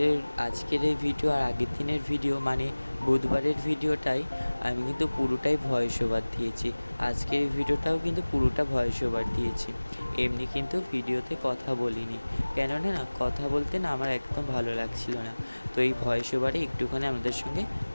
এই ভিডিও আর আগের দিনের ভিডিও, মানে বুধবারের ভিডিওটাই আমি কিন্তু পুরোটাই ভয়েস ওভার দিয়েছি। আজকের এই ভিডিওটাও কিন্তু পুরোটা ভয়েস ওভার দিয়েছি, এমনি কিন্তু ভিডিওতে কথা বলিনি। কেননা না কথা বলতে না আমার একদম ভালো লাগছিল না। তো এই ভয়েস ওভারে একটুখানি আমাদের সঙ্গে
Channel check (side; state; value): both; inverted; correlation -1.00